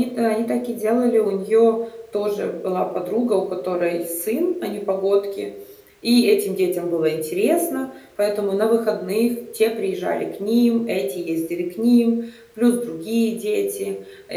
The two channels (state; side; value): identical; both; correlation 1.00